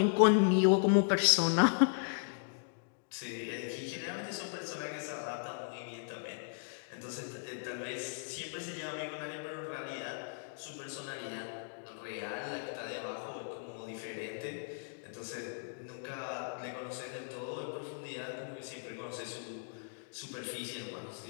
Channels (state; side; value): silent; right; digital silence